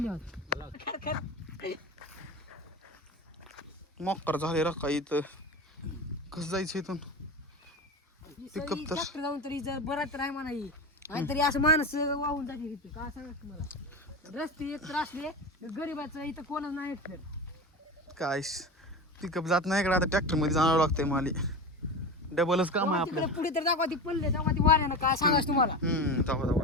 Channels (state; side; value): normal; both; correlation 0.25